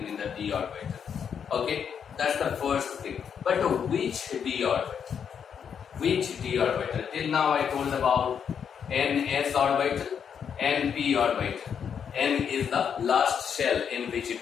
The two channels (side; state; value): right; quieter; 7.5 dB